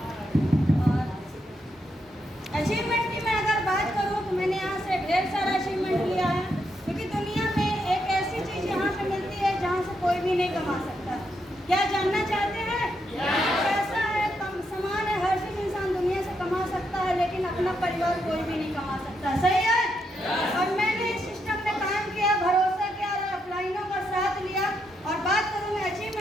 और अचीवमेंट की मैं अगर बात करूँ तो मैंने यहाँ से ढेर सारा अचीवमेंट लिया है, क्योंकि दुनिया में एक ऐसी चीज़ यहाँ पे मिलती है जहाँ से कोई भी नहीं कमा सकता। क्या जानना चाहते हैं? पैसा है, सामान है, हर चीज़ इंसान दुनिया से कमा सकता है, लेकिन अपना परिवार कोई भी नहीं कमा सकता। सही है? और मैंने इस सिस्टम में काम किया, भरोसा किया और अपलाइनों का साथ लिया। और बात करूँ मैं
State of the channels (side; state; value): both; normal; correlation 0.80